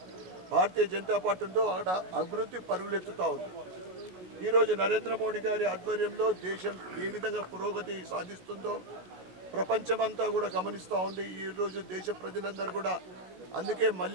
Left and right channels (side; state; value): left; late; 16 ms